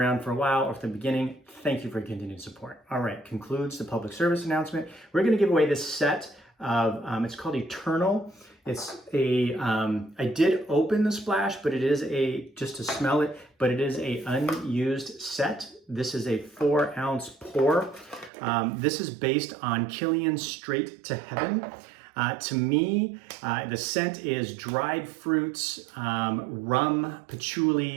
for a while or from the beginning, thank you for your continued support. All right, concludes the public service announcement. We're going to give away this set of, it's called Eternal. It's I did open the splash, but it is just to smell it, but it is a unused set. This is a 4-ounce pour. This is based on Killian's Straight to Heaven. To me, the scent is dried fruits, rum,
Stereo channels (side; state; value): left; drops out; at 18.3 s